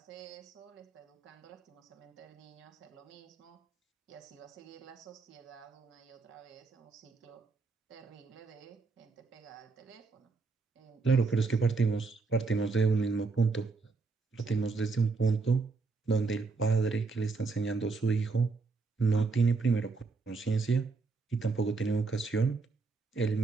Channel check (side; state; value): left; quieter; 4.2 dB